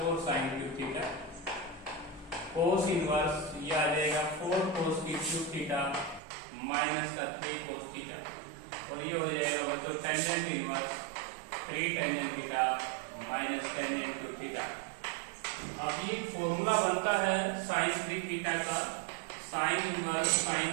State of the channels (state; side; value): drops out; left; at 6.2 s